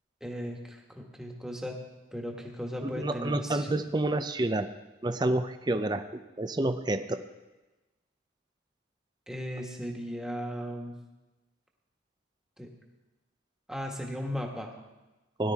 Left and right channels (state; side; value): normal; both; correlation 0.73